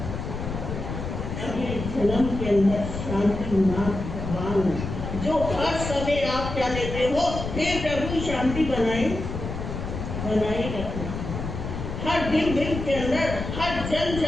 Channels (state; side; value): noise; left; rumble, 6 dB below the sound